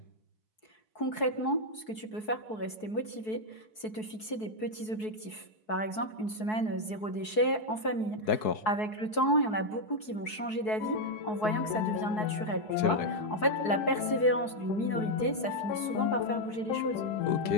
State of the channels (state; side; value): late; right; 4.7 ms